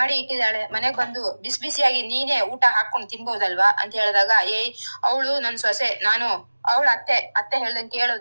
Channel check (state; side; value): inverted; both; correlation -1.00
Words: ಇಟ್ಟಿದ್ದಾಳೆ, ಮನೆಗ್ ಬಂದು ಬಿಸಿ ಬಿಸಿಯಾಗಿ ನೀನೇ ಊಟ ಹಾಕೊಂಡು ತಿನ್ಬೋದಲ್ವಾ ಅಂತ ಹೇಳಿದಾಗ, ಅವಳು ನನ್ ಸೊಸೆ, ನಾನು ಅವಳ ಅತ್ತೆ ಹೇಳ್ದಂಗೆ